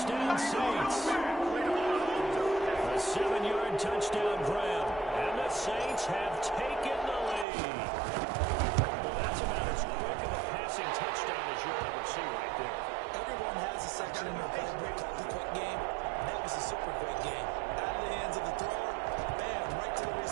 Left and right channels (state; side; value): drops out; left; at 7.5 s